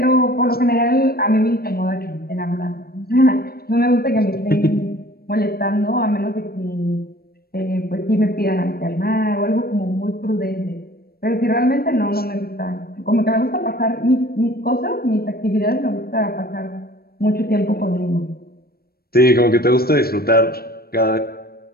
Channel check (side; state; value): right; late; 0.44 ms